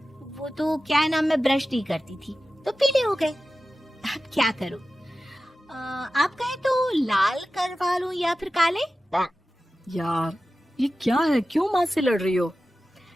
वो तो क्या नाम, मैं ब्रश नहीं करती थी तो पीले हो गए। अब क्या करूं? आप कहें तो लाल करवा लूं या फिर काले? यार ये क्या है, क्यों माँ से लड़ रही हो?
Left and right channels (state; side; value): normal; both; correlation 0.95